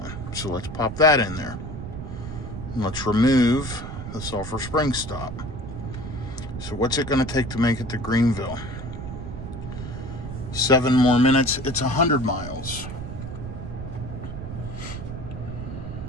So let's pop that in there. And let's remove the Sulphur Springs stop. So what's it going to take to make it to Greenville? 7 more minutes. It's 100 miles.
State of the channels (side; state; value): right; noise; rumble, 8 dB below the sound